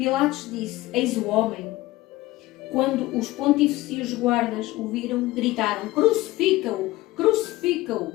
disse: eis o homem. Quando os pontífices e os guardas o viram, gritaram: crucifica-o! Crucifica-o!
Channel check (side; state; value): right; quieter; 17.9 dB